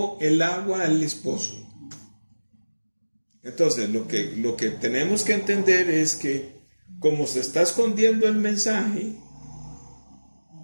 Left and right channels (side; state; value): both; inverted; correlation -1.00